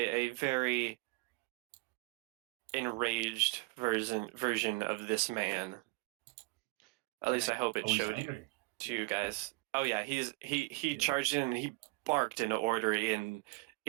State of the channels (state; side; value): quieter; left; 25.2 dB